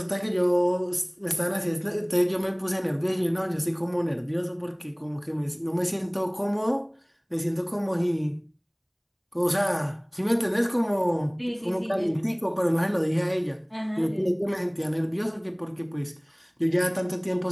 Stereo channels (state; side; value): identical; both; correlation 1.00